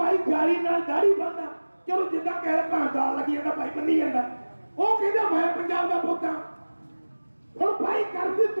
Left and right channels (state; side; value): inverted; both; correlation -1.00